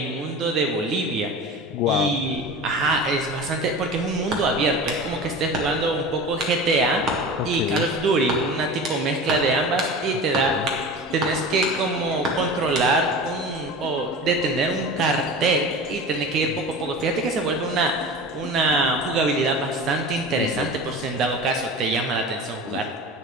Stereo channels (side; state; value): both; normal; correlation 0.34